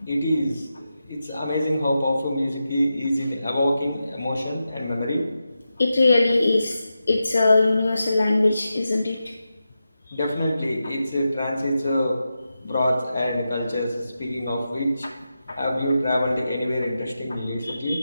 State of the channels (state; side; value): inverted; both; correlation -0.90